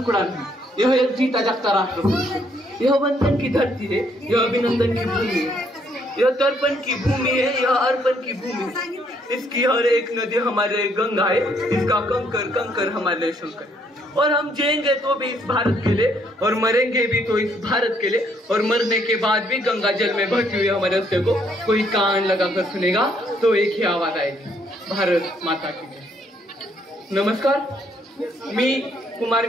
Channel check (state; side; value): normal; both; correlation 0.69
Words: नहीं, यह एक जीता जागता राष्ट्र पुरुष है। यह वंदन की धरती है, यह अभिनंदन की भूमि है, यह तर्पण की भूमि है, यह अर्पण की भूमि है। इसकी हर एक नदी हमारे गंगा है, इसका कंकर कंकर हमारे शंकर। और हम जिएंगे तो भी इस भारत के लिए, और मरेंगे भी तो इस भारत के लिए, और मरने के बाद भी गंगा जल में बहती हुई हमारे रस्ते को कोई कान लगाकर सुनेगा तो एक ही आवाज आएगी, भारत माता की जय। नमस्कार, मी कुमार